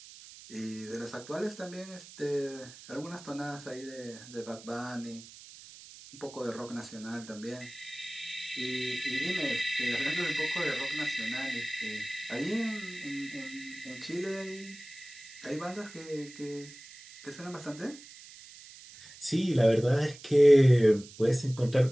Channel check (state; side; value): noise; right; hiss, 18 dB below the sound